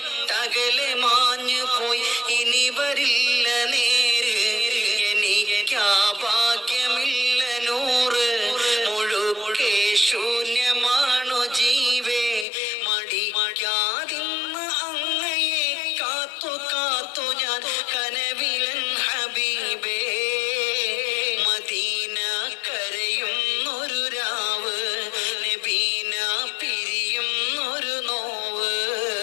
മാഞ്ഞു പോയി ഇനി വരില്ല നേര്, എനിക്കാ ഭാഗ്യമില്ല നൂറ്, മുഴുക്കെ ശൂന്യമാണു ജീവേ, മടിക്കാതിന്ന് അങ്ങയെ കാത്തു കാത്തു ഞാൻ കനവിലൻ ഹബീബേ, മദീന കരയും ഒരു രാവ്, നബീന പിരിയും ഒരു നോവ്,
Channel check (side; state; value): right; drops out; at 12.5 s